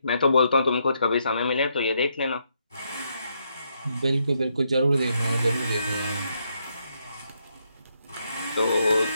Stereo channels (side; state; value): both; inverted; correlation -0.78